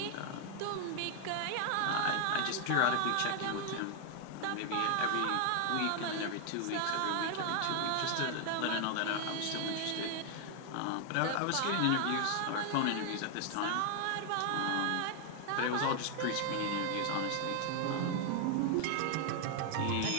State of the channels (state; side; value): different; both; correlation 0.00